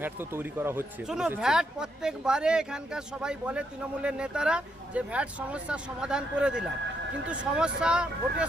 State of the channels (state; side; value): normal; both; correlation 0.77